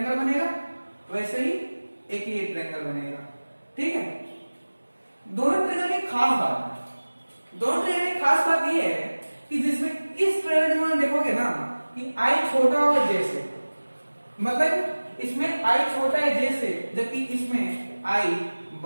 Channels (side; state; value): both; inverted; correlation -1.00